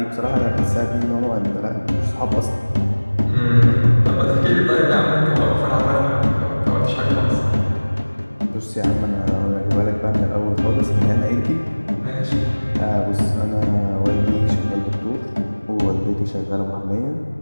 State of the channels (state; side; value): inverted; both; correlation -1.00